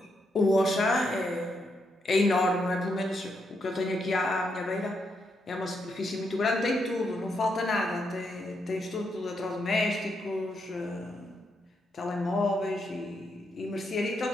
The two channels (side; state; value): both; normal; correlation 0.80